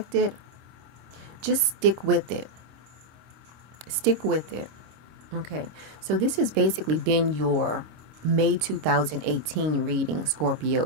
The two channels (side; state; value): left; late; 26 ms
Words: just stick with it. Stick with it. Okay, so this has basically been your May 2018 reading,